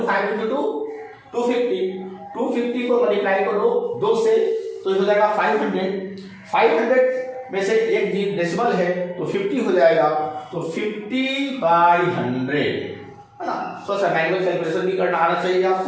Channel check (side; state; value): both; identical; correlation 1.00